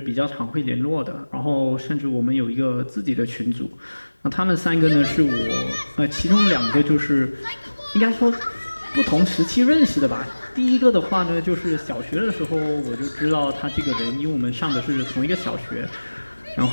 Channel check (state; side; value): inverted; both; correlation -1.00